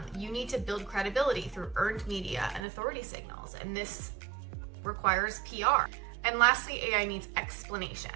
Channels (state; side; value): drops out; left; at 2.6 s